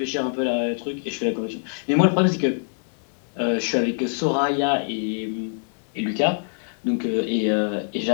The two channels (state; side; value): silent; right; digital silence